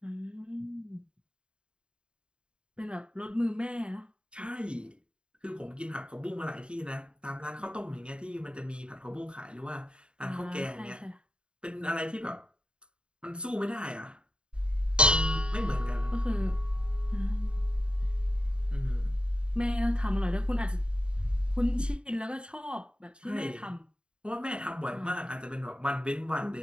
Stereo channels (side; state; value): left; late; 0.053 ms